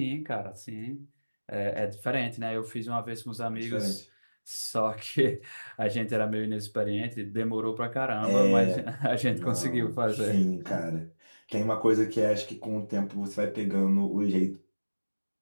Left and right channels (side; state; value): both; inverted; correlation -1.00